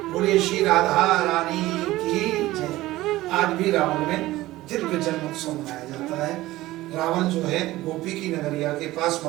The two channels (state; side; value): quieter; left; 17.2 dB